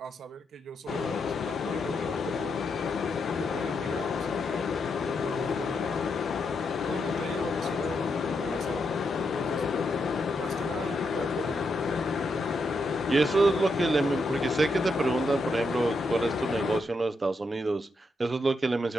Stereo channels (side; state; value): both; normal; correlation 0.82